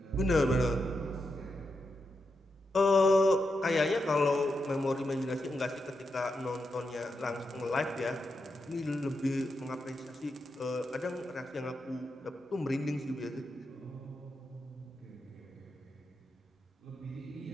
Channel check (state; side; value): normal; both; correlation 0.86